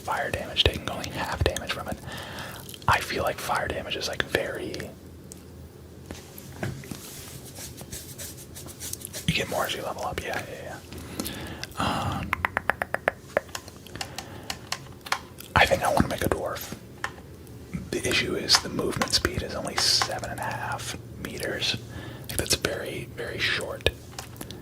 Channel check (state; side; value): identical; both; correlation 1.00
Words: damage taking only half damage from it? I feel like fire damage is like very... You get more as you level up, yeah. I think I want to make a dwarf. The issue is the movement speed is only 7.5 meters. I think that's very short.